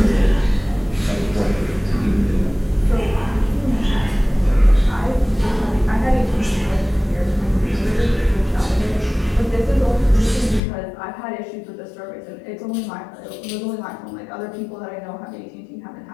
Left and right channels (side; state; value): right; drops out; at 10.6 s